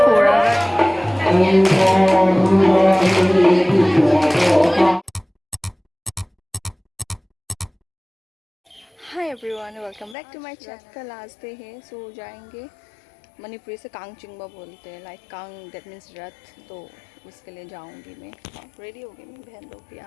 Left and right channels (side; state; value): right; drops out; at 10.2 s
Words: फोड़ा hi everyone welcome back to my channel. कल लास्ट डे है सो जाएंगे मणिपुरी से कांगचिंगबा बोलते हैं लाइक कांग दैट मीन्स रथ तो उसके लिए जाऊंगी मैं रेडी हो गई मेरी बहन लोग भी